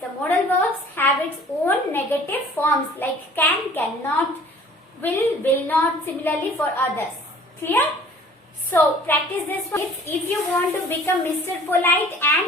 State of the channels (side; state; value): both; normal; correlation 0.50